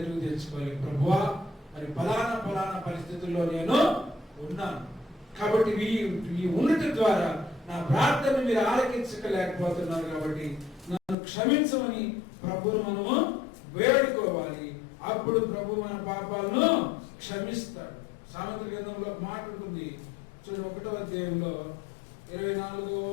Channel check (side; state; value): right; drops out; at 11.2 s